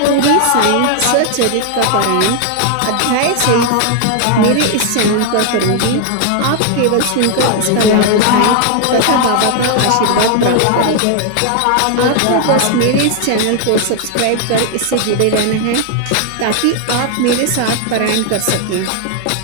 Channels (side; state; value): both; different; correlation 0.00